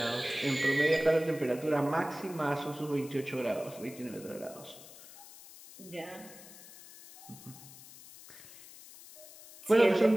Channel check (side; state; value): left; noise; hiss, 18 dB below the sound